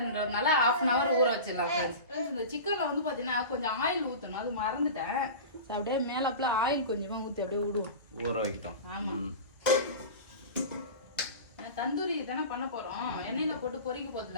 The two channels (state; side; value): inverted; both; correlation -0.31